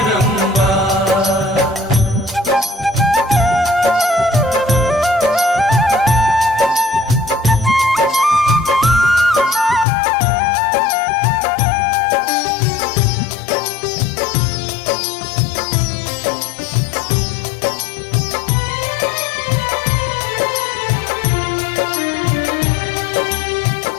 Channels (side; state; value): right; drops out; at 9.9 s